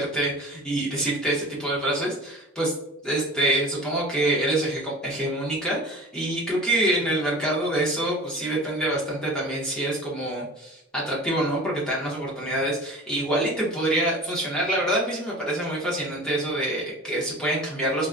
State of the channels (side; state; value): both; normal; correlation 0.39